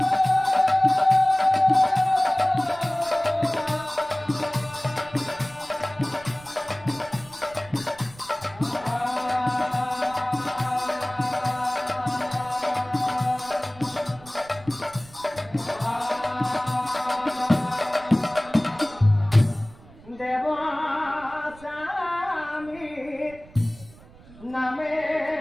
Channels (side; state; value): right; noise; rumble, 22 dB below the sound